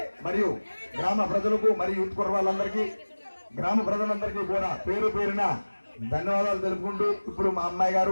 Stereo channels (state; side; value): inverted; both; correlation -1.00